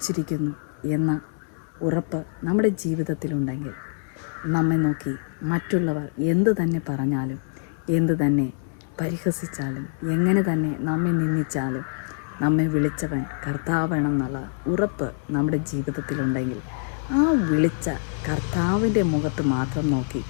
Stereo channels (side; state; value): right; silent; digital silence